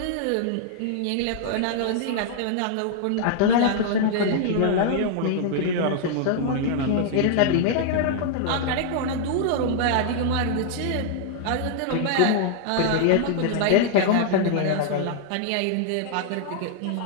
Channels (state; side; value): different; both; correlation -0.01